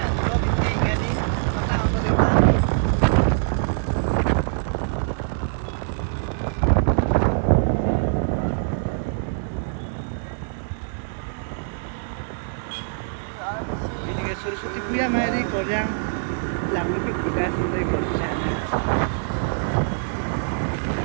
Sursuti Puya Mari Koryang Lamu ke tugas dari komisana.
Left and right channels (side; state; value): left; silent; 63 dB below the other